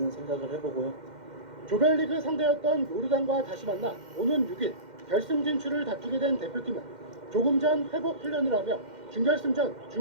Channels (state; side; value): late; left; 2.1 ms